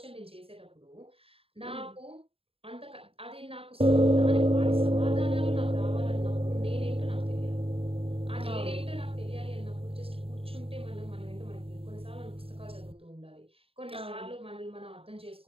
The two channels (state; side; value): late; left; 0.27 ms